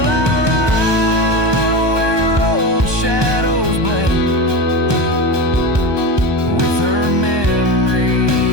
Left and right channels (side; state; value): left; late; 1.2 ms